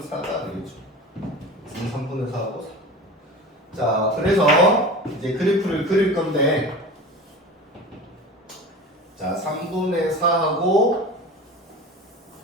4가 되겠죠. x는 3분의 4하고 4. 자, 그래서 이제 그래프를 그릴 건데, 자, 3분의 4하고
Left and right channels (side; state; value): both; normal; correlation 0.34